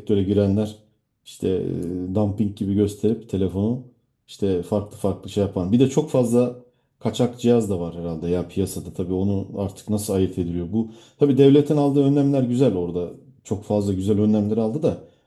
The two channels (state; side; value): identical; both; correlation 1.00